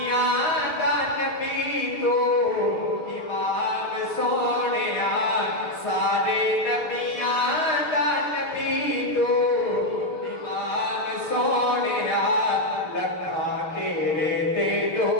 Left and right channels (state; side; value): late; right; 6.5 ms